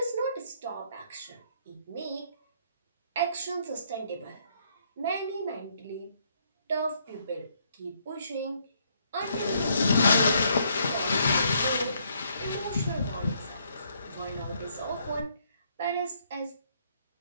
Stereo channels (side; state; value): both; inverted; correlation -0.70